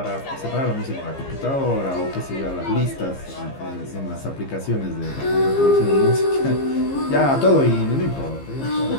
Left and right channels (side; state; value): right; late; 15 ms